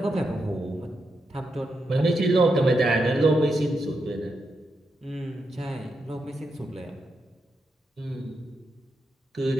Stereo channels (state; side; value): normal; both; correlation 0.84